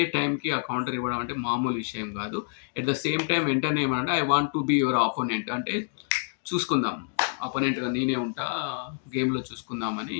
టైంకి ఆ కౌంటర్ ఇవ్వడం అంటే మామూలు విషయం కాదు. ఎట్ ద సేమ్ టైం వెంటనే ఏమనంటే I want to be your opponent అంటే చూసుకుందాం. అపోనెంట్‌గా నేనే ఉంటా. గేమ్‌లో చూసుకుందామని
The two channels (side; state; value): right; silent; 60 dB below the other